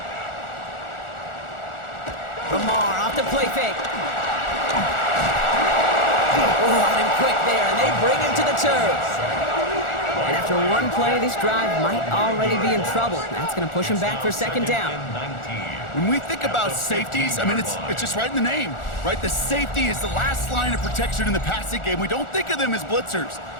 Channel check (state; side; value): late; right; 1.4 ms